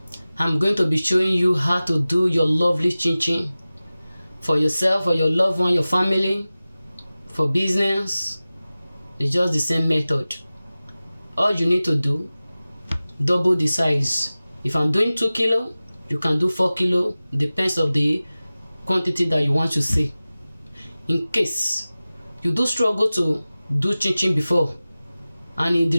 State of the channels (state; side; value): inverted; both; correlation -0.97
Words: I'm going to be showing you how to do your lovely chin chin for yourself, for your loved one, your family, for business. It's just the same method. All you need to do, double the size. If I'm doing 2 kilo, you can do 4 kilo, depends of the quantity that you want to see. In case you do struggle to do chin chin before and the